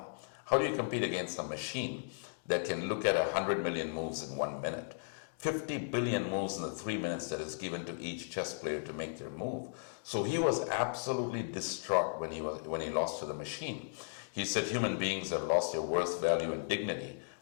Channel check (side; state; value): right; silent; digital silence